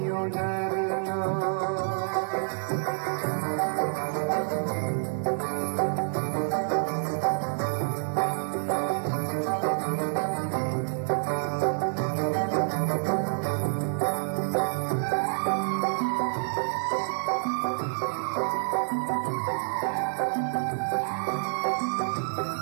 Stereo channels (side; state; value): left; silent; digital silence